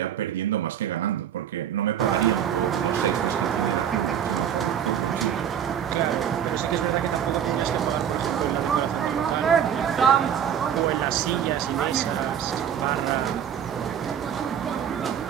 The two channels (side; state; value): left; quieter; 9.0 dB